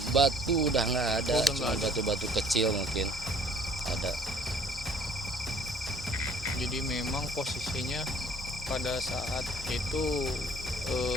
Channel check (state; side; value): normal; both; correlation 0.57